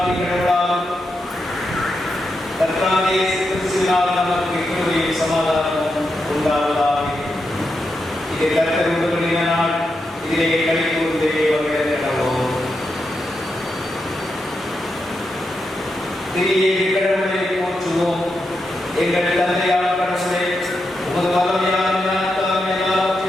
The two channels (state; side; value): normal; both; correlation 0.86